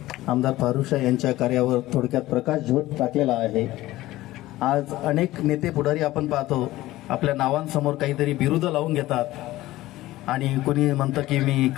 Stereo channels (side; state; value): right; quieter; 16.7 dB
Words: आमदार फारुखशाह यांच्या कार्यावर थोडक्यात प्रकाश झोत टाकलेला आहे. आज अनेक नेते पुढारी आपण पाहतो आपल्या नावांसमोर काहीतरी बिरुद लावून घेतात आणि कोणी म्हणतं की मी